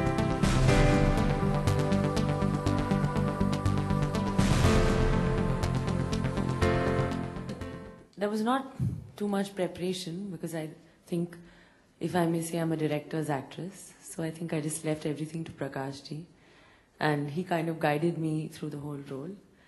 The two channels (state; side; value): identical; both; correlation 1.00